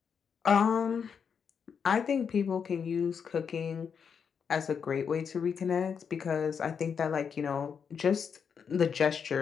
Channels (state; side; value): quieter; right; 6.7 dB